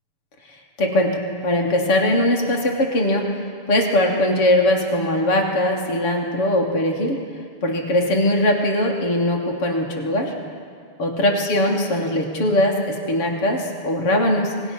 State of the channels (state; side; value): late; right; 7.1 ms